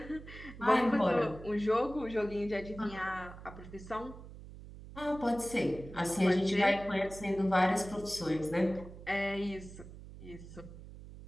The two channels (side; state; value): right; noise; hum, 15 dB below the sound